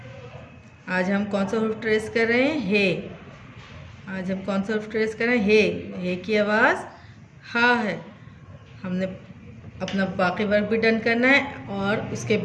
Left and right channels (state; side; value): identical; both; correlation 1.00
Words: आज हम कौन सा हुर्फ ट्रेस कर रहे हैं? हे। आज हम कौन सा हुर्फ ट्रेस कर रहे हैं? हे। हे की आवाज़ हा है। हमने अपना बाकी वर्क भी डन करना है और उसके